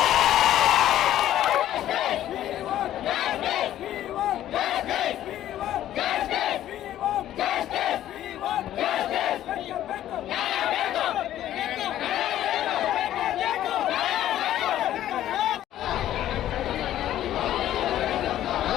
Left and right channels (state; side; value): quieter; right; 12.5 dB